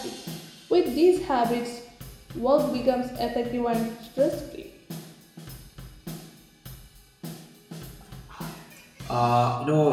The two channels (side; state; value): both; identical; correlation 1.00